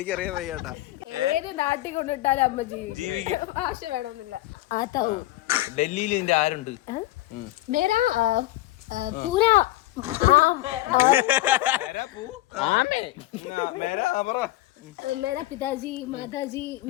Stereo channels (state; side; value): quieter; right; 17.2 dB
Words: വയ്യാട്ടാ. ഏത് നാട്ടിൽ കൊണ്ടിട്ടാലും അമ്മ ജീവിക്കും. ഭാഷ വേണമെന്നില്ല. ആത്താവും. ഡൽഹിയിൽ ഇതിന്റെ ആരുണ്ട്? മേരാ പൂരാ मेरा पिताजी, माताजी,